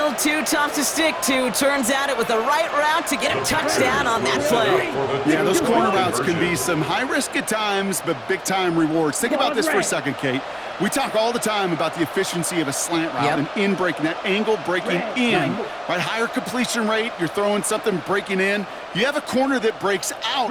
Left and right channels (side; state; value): both; identical; correlation 1.00